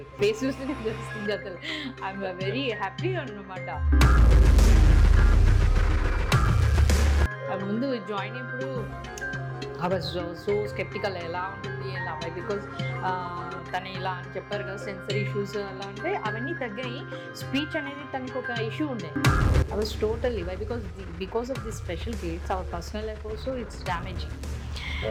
good. Face చూస్తేనే తెలుస్తుంది అసలు. ఐఎమ్ వెరీ హ్యాపీ అన్నమాట. ముందు జాయిన్ అయినప్పుడు ఐ వాజ్ సో స్కెప్టికల్, ఎలా ఉంటుంది ఎలా, బికాజ్ తను ఇలా అని చెప్పారు కదా, సెన్సరీ ఇష్యూస్ అలా అంటే అవన్నీ తగ్గాయి. స్పీచ్ అనేది తనకు ఒక ఇష్యూ ఉండే. I was totally because of the special kids our personal life also it's damaging.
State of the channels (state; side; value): identical; both; correlation 1.00